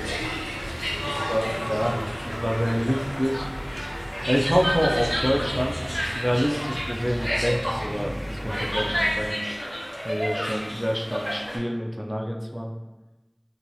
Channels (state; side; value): identical; both; correlation 1.00